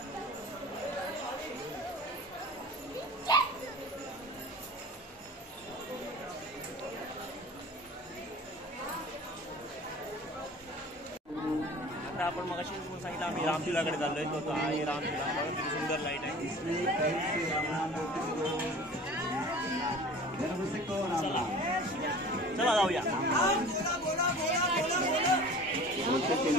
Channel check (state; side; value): normal; both; correlation 0.42